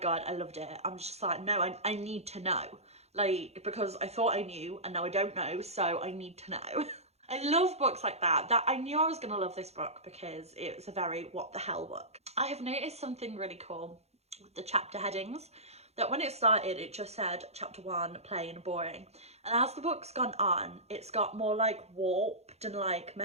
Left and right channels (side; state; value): left; late; 0.31 ms